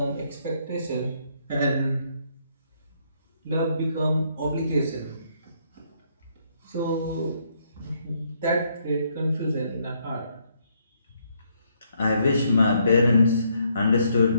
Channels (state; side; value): inverted; both; correlation -0.72